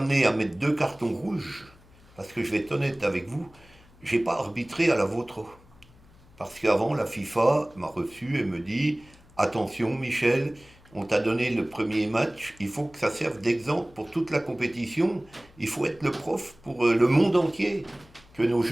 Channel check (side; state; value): left; noise; hum, 26 dB below the sound